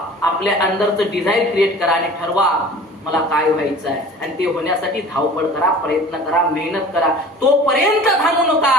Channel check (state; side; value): normal; both; correlation 0.43